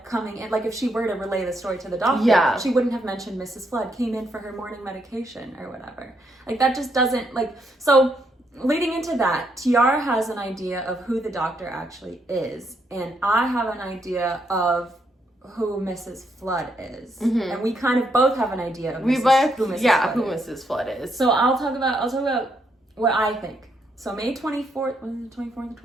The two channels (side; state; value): both; normal; correlation 0.76